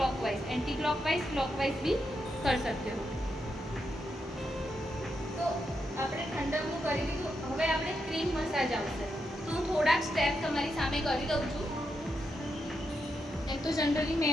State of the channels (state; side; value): normal; both; correlation 0.83